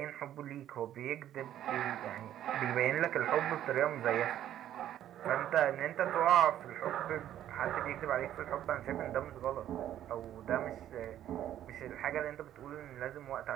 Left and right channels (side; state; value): left; quieter; 11.6 dB